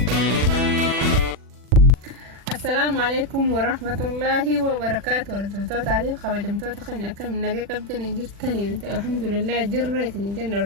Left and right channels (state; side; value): late; left; 40 ms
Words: السلام عليكم ورحمة الله وبركاته. ورتبتوت عليه خبجمتوت خلنا كم نجي قبضني جرتني الحمد لله جريتني الجنة.